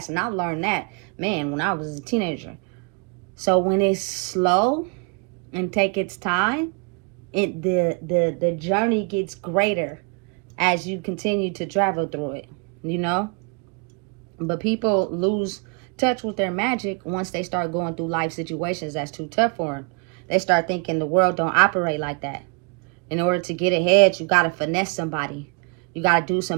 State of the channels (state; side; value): quieter; left; 35.1 dB